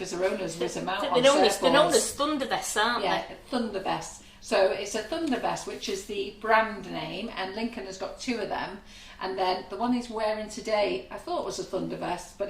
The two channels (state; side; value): identical; both; correlation 1.00